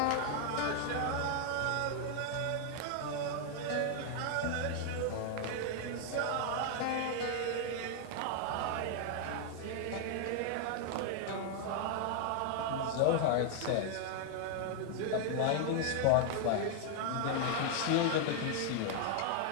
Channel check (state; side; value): different; both; correlation 0.00